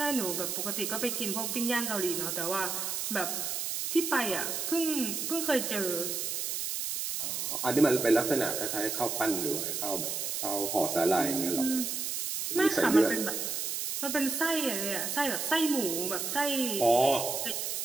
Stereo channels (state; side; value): noise; right; hiss, 2 dB below the sound